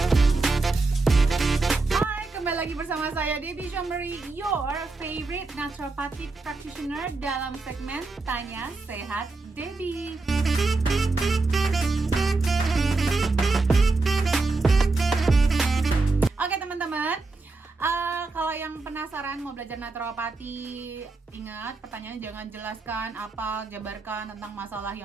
Bersama saya Debbie Jambari, your favorite naturopathic practitioner dalam segmen Tanya Sehat Debbie. Oke teman-teman, kalau yang penasaran mau belajar naturopati, ingat pertanyaannya jangan jelaskan apa, jabarkan tentang masalah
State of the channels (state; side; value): quieter; left; 3.5 dB